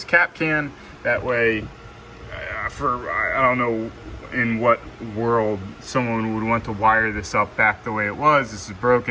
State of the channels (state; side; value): identical; both; correlation 1.00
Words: cap can. That way, I don't know in what world someone would want to wire this up back the way it was. This is